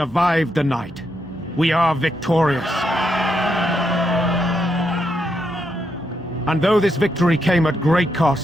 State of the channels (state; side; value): normal; both; correlation 0.80